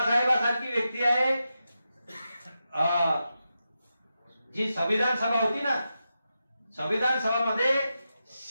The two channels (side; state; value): both; inverted; correlation -0.89